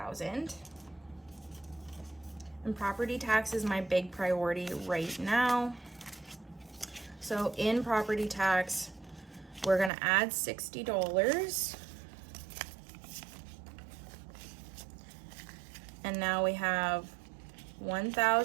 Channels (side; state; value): left; drops out; at 9.9 s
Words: And property tax is my big priority right now. So in property tax, we're gonna add $60. And now we have